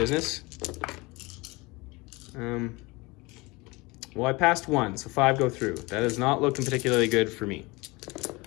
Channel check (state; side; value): quieter; right; 24.3 dB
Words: Well, I passed 1, so 5 go through. That is not looking particularly good for me.